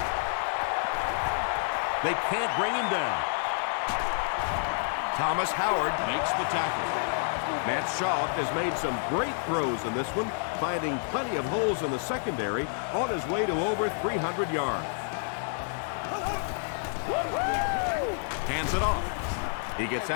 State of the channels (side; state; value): right; silent; digital silence